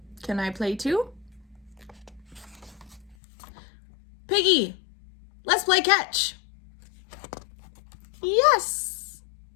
Can I Play Too? Piggy, let's play catch. Yes,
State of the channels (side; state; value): right; drops out; at 3.2 s